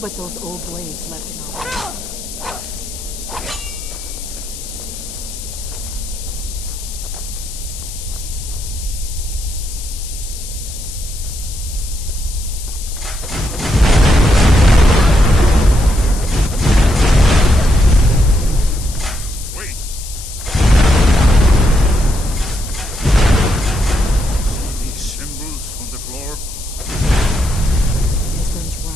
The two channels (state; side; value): noise; left; hiss, 12 dB below the sound